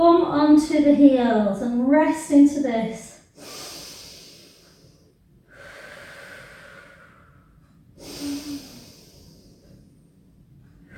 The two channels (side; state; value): both; identical; correlation 1.00